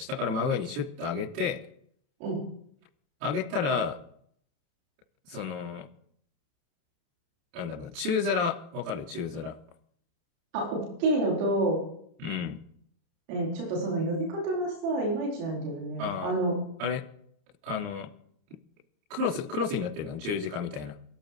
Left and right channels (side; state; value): left; late; 30 ms